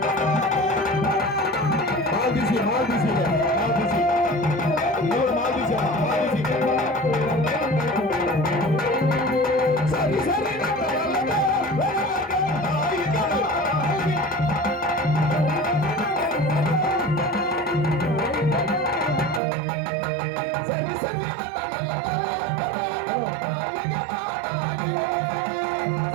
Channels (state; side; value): drops out; left; at 19.4 s